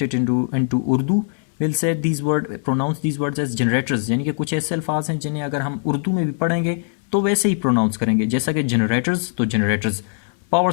it into Urdu, we'll say pronounce these words as generators. यानी कि कुछ ऐसे अल्फाज हैं जिन्हें अगर हम उर्दू में भी पढ़ेंगे तो वैसे ही प्रोनाउंस करेंगे, जैसा कि जनरेटर्स तो जनरेटर्स, पावर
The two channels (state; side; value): silent; right; 60 dB below the other